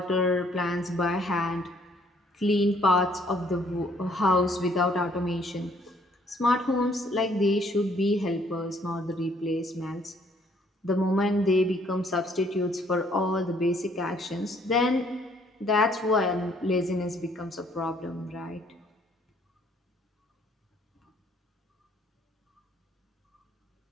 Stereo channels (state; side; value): normal; both; correlation 0.64